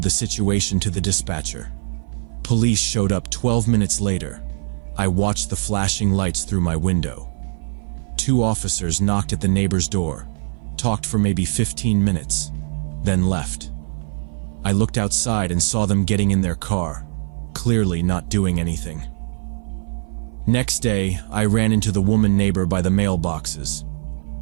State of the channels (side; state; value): left; silent; 56 dB below the other